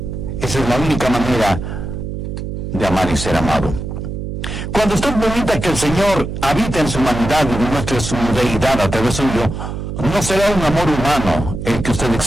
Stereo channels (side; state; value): right; noise; hum, 6 dB below the sound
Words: Esa es la única manera de amar y ser amado. Cuando usted permita que el Señor habite en su humanidad y demuestre su deidad a través suyo, no será un amor humano el que usted